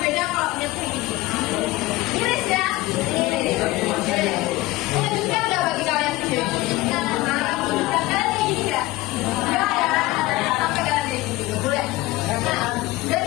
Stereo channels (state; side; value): quieter; right; 19.1 dB